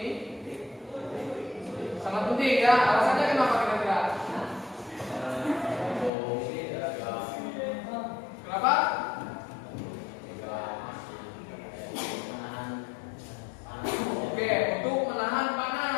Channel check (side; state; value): right; drops out; at 6.1 s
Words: ini? Sangat penting ya. Alasannya kenapa kira-kira? Kenapa? Oke, untuk menahan